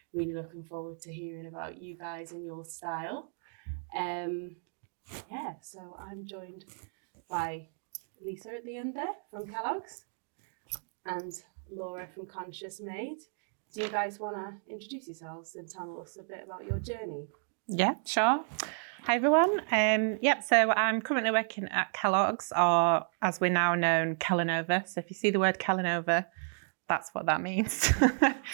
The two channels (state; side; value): silent; left; 56 dB below the other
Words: really looking forward to hearing about you guys and your style. So I'm joined by Lisa at the end there from Kellogg's and Laura from Conscious Made. Do you guys want to introduce yourselves and tell us a bit about your journey? Yeah, sure. Hi, everyone. So I'm currently working at Kellogg's, or as we're now known, Kellanova. So if you see the word Kellanova, that's what that means.